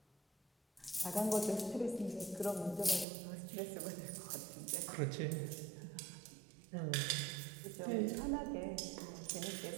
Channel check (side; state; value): left; drops out; at 3.1 s